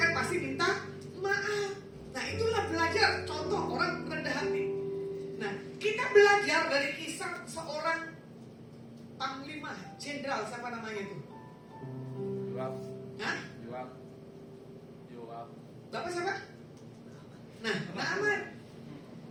pasti minta maaf. Nah itulah belajar, contoh orang rendah hati. Nah kita belajar dari kisah seorang panglima, jenderal, siapa namanya itu? Yoab. Hah? Yoab. Bapak siapa? Nah, Naaman.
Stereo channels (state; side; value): identical; both; correlation 1.00